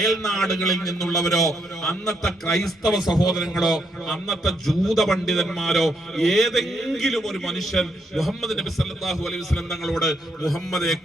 നിന്നുള്ളവരോ അന്നത്തെ ക്രൈസ്തവ സഹോദരങ്ങളോ അന്നത്തെ ജൂത പണ്ഡിതന്മാരോ ഏതെങ്കിലും ഒരു മനുഷ്യൻ മുഹമ്മദ് നബി സല്ലല്ലാഹു അലൈഹി വസല്ലം തങ്ങളോട് മുഹമ്മദേ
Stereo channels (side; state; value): both; normal; correlation 0.76